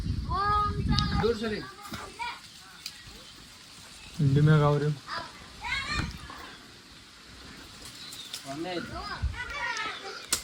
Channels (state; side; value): identical; both; correlation 1.00